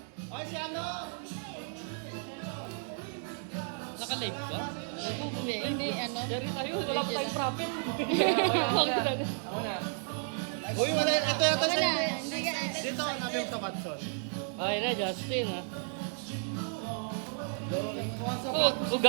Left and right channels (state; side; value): silent; left; 56 dB below the other